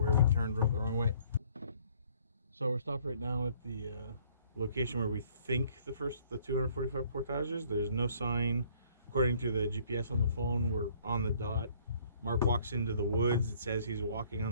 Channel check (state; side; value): inverted; both; correlation -0.60